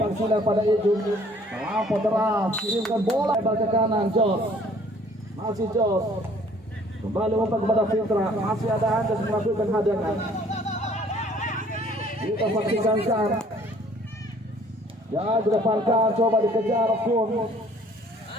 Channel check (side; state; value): both; normal; correlation 0.57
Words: sudah pada Ijul. Melampau deras, kirimkan bola lebar ke kanan. Jos masih Jos. Kembali umpan kepada Fitra. Masih ada Anjas melakukan hadangan. Kita saksikan kan. Ya depankan, coba dikejar pun